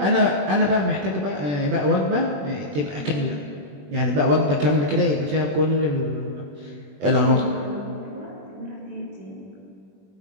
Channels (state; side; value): late; left; 21 ms